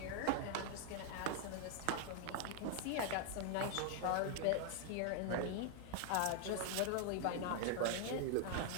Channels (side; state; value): both; different; correlation 0.00